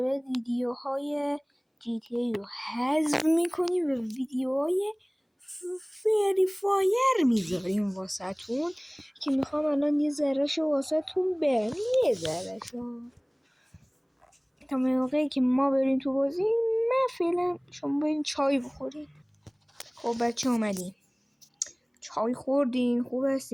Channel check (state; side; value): identical; both; correlation 1.00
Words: بعد ویدیوهای GTA رو حذف میکنیم و ویدیوهای فری فایر میذاریم واسهتون که میخوام الان یه ذرهشو واسهتون برم، یه ذرهشو تا موقعی که ما بریم تو بازی. من فعلا شما برین چای بخورین. خب بچه اومدیم، چای خوردین، خوب